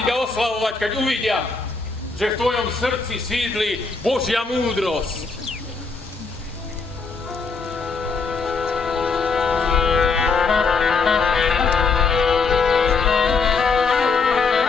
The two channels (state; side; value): quieter; right; 4.6 dB